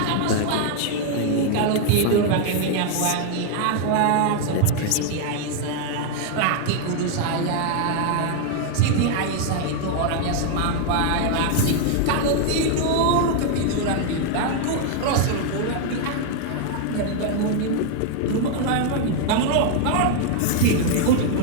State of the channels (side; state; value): both; different; correlation 0.00